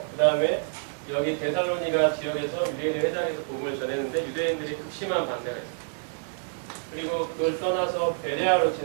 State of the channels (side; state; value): left; silent; 56 dB below the other